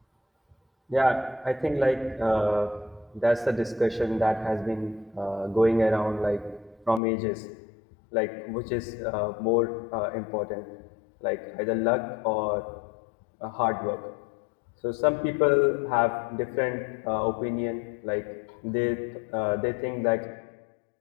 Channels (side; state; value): right; drops out; at 7.0 s